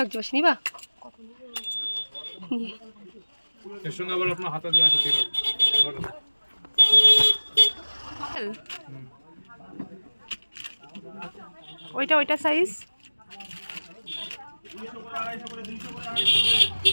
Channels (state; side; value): inverted; both; correlation -1.00